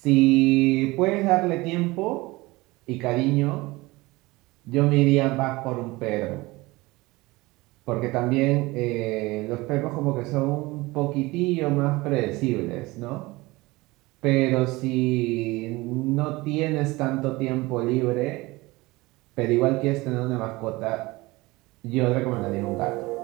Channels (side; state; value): left; quieter; 21.6 dB